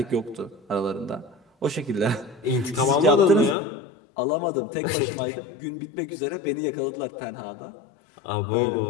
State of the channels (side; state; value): right; drops out; at 3.6 s